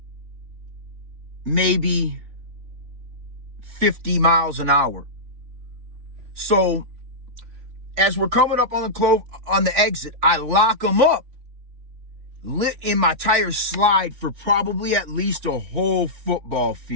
maybe 50 miles an hour. So as we're coming up on the exit, I lock them up, and my tires slide for probably at least a whole football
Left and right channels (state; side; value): late; left; 3.4 ms